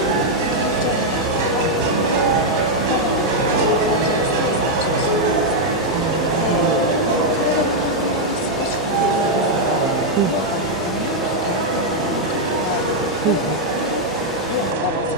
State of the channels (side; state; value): both; normal; correlation -0.01